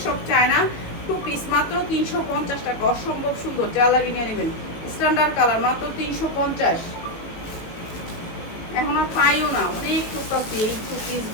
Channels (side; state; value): right; late; 18 ms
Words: সব চায়না 2 পিস, মাত্র 350 টাকা। অসম্ভব সুন্দর, যা লাগে নিয়ে নেবেন। স্ট্যান্ডার্ড কালার, মাত্র 350। এখন আর পাইও না, অনেক করতেছি এই